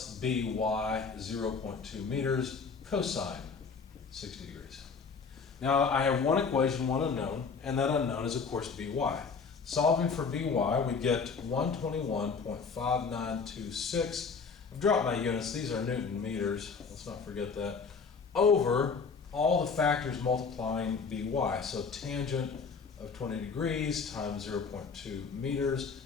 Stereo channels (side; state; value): right; quieter; 5.2 dB